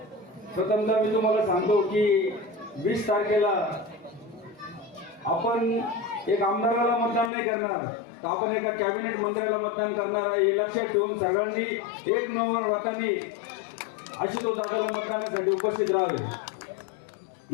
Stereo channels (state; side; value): drops out; right; at 7.3 s